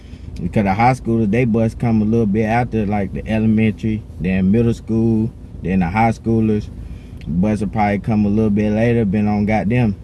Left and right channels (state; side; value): identical; both; correlation 1.00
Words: because the high schoolers, they bus come a little bit after, like the elementary, then middle school, then the high schoolers bus will probably come a little bit later, been on goddamn,